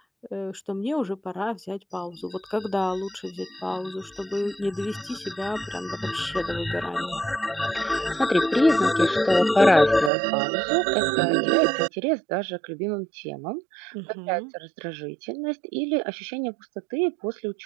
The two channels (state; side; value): drops out; left; at 10.1 s